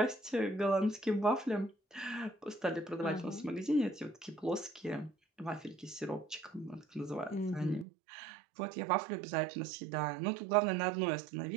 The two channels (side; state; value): left; drops out; at 7.9 s